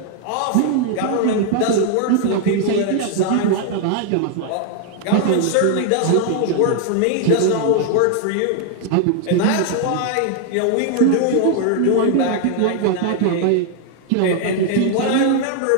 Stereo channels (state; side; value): different; both; correlation 0.00